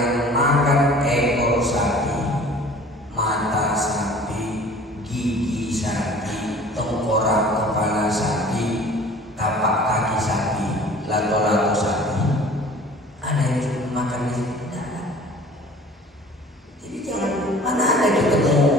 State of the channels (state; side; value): normal; both; correlation 0.47